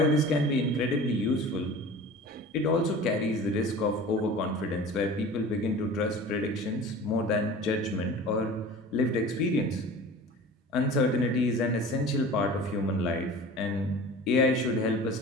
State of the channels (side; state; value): both; normal; correlation 0.39